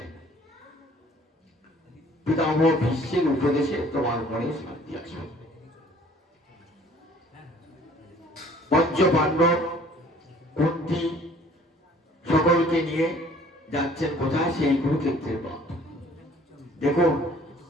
পিতামহ ভীষ্মের উপদেশে তোমার মনে শান্তি আসবে। পঞ্চ পাণ্ডব, কুন্তি সকলকে নিয়ে যাচ্ছেন কোথায়? সেই কুরুক্ষেত্রের পথ। দেখুন,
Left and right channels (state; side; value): normal; both; correlation 0.54